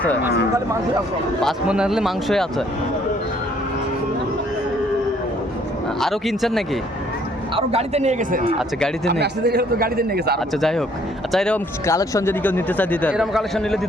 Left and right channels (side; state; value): both; normal; correlation 0.63